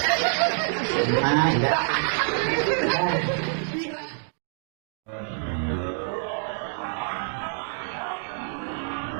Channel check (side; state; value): left; silent; digital silence